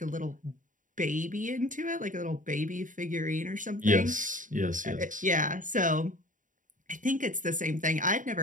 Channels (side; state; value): left; late; 0.38 ms